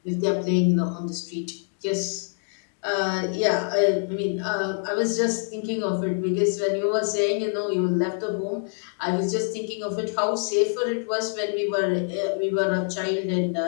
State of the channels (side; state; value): right; silent; 61 dB below the other